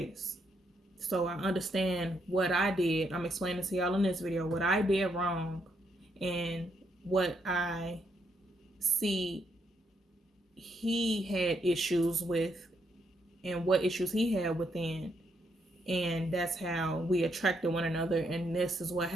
So I understand what I did. I'm explaining to y'all in this video what I did wrong and what I see he had issues with and what issues he had within. And that's how we attracted one another. And this is what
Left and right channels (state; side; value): normal; both; correlation 0.77